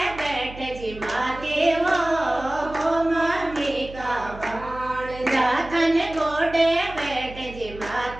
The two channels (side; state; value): right; noise; hum, 15 dB below the sound